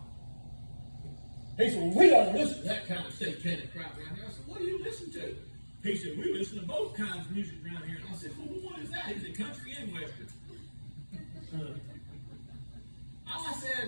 He said, well, we don't listen to that kind of satanic crap around here. I said, what do you listen to? He said, we listen to both kinds of music around here. And I said, well, what is that? He said, country and western. I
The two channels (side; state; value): both; inverted; correlation -1.00